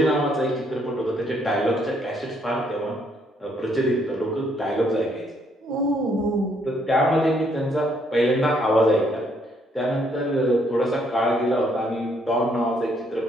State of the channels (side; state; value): both; normal; correlation 0.70